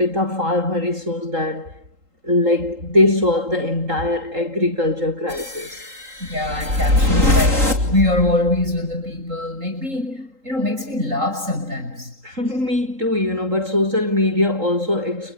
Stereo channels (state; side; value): late; left; 3.8 ms